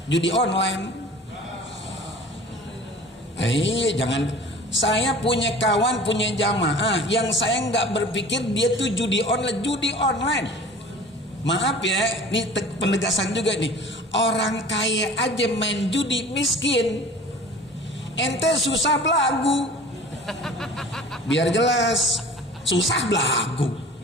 judi online, jangan. Saya punya kawan, punya jamaah, yang saya nggak berpikir dia tuh judi online. Maaf ya, ini penegasan juga nih. Orang kaya aja main judi miskin. Ente susah belagu. Biar jelas, susah belagu.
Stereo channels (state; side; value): normal; both; correlation 0.43